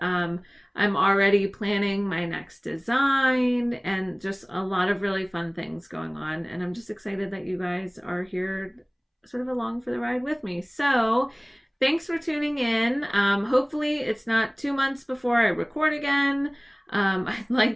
I'm already planning my next design and just a lot of really fun things going on. And I'm just excited that you guys are here sort of along for the ride with me. So thanks for tuning in. Hopefully it's not 2 months before I record again. I'd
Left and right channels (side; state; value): both; identical; correlation 1.00